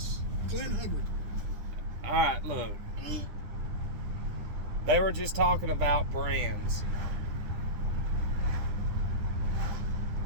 Glenn Hubbard. All right, look. They were just talking about brands.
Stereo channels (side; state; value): left; late; 9.7 ms